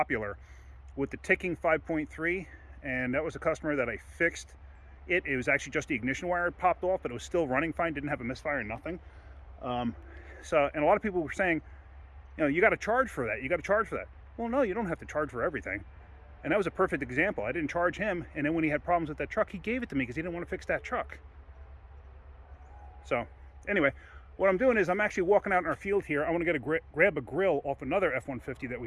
with the ticking 5.3, and that was a customer that I fixed. It was actually just the ignition wire had popped off, but it was still running fine, didn't have a misfire, nothing. And a lot of people were saying, you got to charge for that. You got to charge for that. Well, no, you don't have to charge for everything. And that was a perfect example. I didn't charge him, and then when he had problems with that truck, he gave it to me because he didn't want to fix that truck. So anyway, what I'm doing is I'm actually walking out in our field here. I want to get grab a grill off another F-150 that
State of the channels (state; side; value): identical; both; correlation 1.00